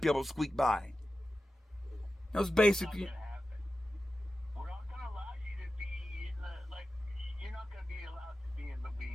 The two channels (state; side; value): normal; both; correlation 0.93